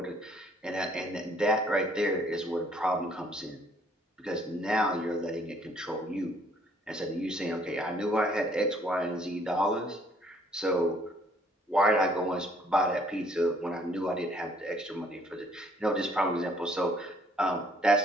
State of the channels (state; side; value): normal; both; correlation 0.62